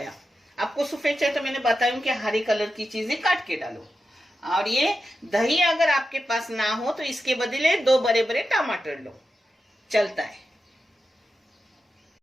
आपको सफेद चाहिए तो मैंने बताया कि हरी कलर की चीजें काट के डालो। और ये दही अगर आपके पास ना हो तो इसके बदले 2 बड़े बड़े टमाटर लो, चलता है।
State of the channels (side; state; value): both; normal; correlation 0.90